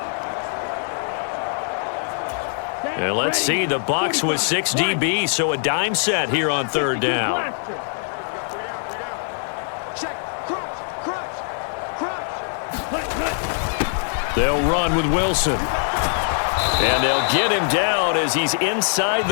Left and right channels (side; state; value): right; silent; 61 dB below the other